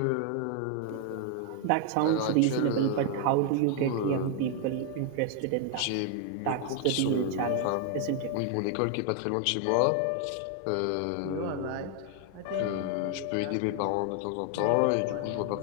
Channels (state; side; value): different; both; correlation 0.00